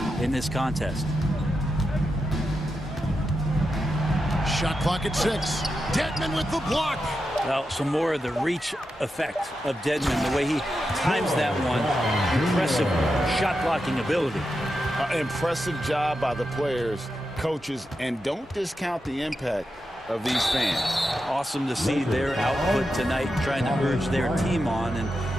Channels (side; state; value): both; normal; correlation 0.88